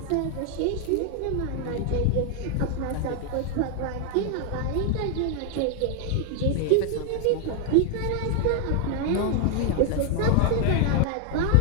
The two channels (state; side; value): different; both; correlation 0.00